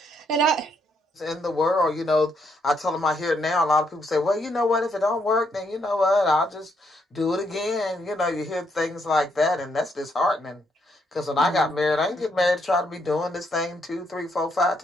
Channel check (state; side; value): normal; both; correlation 0.75